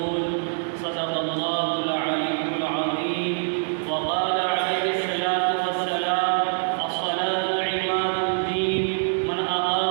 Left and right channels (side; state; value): left; silent; digital silence